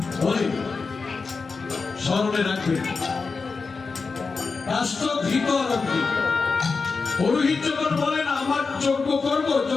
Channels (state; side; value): quieter; right; 4.6 dB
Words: বলেন, স্মরণে রাখবেন। কাষ্ঠ, ঘৃত আর অগ্নি। পুরোহিত যখন বলেন আমার যজ্ঞ করব,